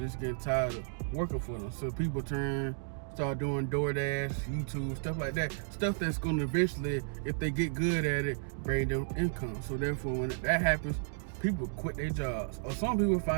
getting tired of working for them. So people start doing DoorDash, YouTube, stuff like that. Stuff that's gonna eventually, if they get good at it, bring them income. So therefore, when that happens, people quit their jobs. Or some people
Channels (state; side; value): silent; left; digital silence